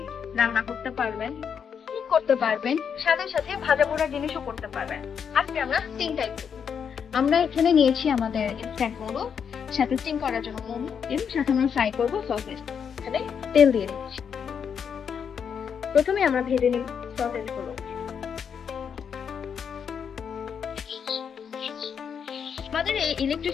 রান্না করতে পারবেন, কুক করতে পারবেন, সাথে সাথে ভাজা পোড়া জিনিসও করতে পারবেন। আজকে আমরা স্টিম টাইপ করব। আমরা এখানে নিয়েছি আমাদের ইনস্ট্যান্ট নুডলস, সাথে স্টিম করার জন্য মোমো, এবং সাথে আমরা ফ্রাই করবো সসেজ। এখানে তেল দিয়ে দিচ্ছি। প্রথমে আমরা ভেজে নিই সসেজ গুলো। আমাদের এই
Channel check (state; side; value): quieter; right; 7.2 dB